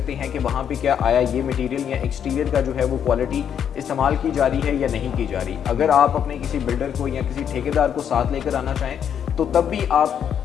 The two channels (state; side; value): quieter; right; 8.6 dB